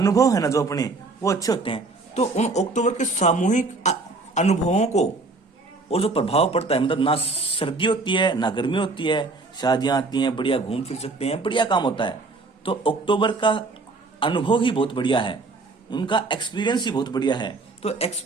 है ना जो अपने, वो अच्छे होते हैं। तो उन अक्टूबर के सामूहिक अनुभवों को और जो प्रभाव पड़ता है, मतलब ना सर्दी होती है ना गर्मी होती है, शादियां आती हैं, बढ़िया घूम फिर सकते हैं, बढ़िया काम होता है। तो अक्टूबर का अनुभव ही बहुत बढ़िया है, उनका एक्सपीरियंस ही बहुत बढ़िया है। तो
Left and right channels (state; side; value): quieter; left; 3.6 dB